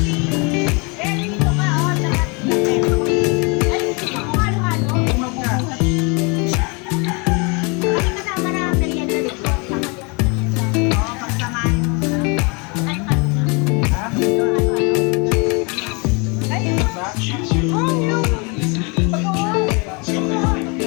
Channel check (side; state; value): right; quieter; 31.2 dB